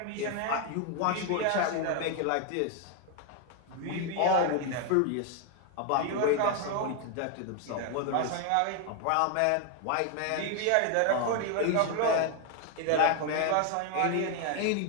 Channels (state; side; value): different; both; correlation 0.01